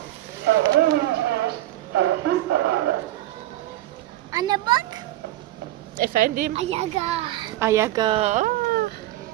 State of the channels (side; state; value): left; quieter; 15.3 dB